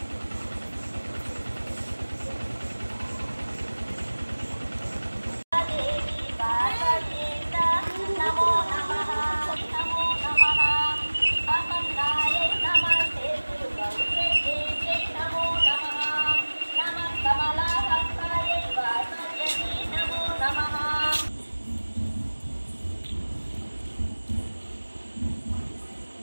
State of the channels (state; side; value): inverted; both; correlation -1.00